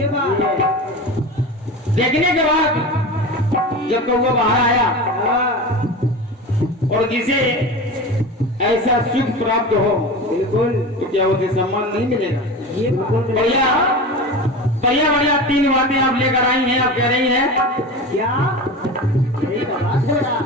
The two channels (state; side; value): normal; both; correlation 0.29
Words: बात है। देखने के बाद जब कौवा बाहर आया, और जिसे ऐसा सुख प्राप्त हो, बिल्कुल, तो क्या उसे सम्मान नहीं मिलेगा? ये बढ़िया बढ़िया बढ़िया 3 बातें आप लेकर आई हैं। आप कह रही हैं क्या?